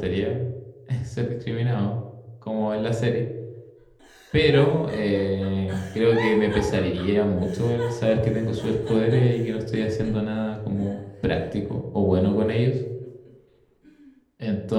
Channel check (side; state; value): both; identical; correlation 1.00